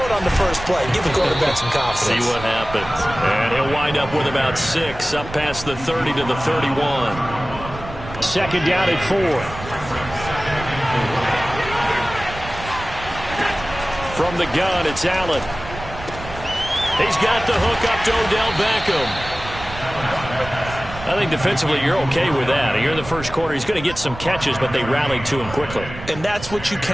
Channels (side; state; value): right; noise; rumble, 12 dB below the sound